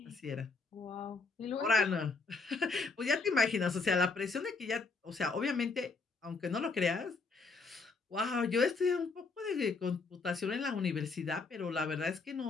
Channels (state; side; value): quieter; right; 4.1 dB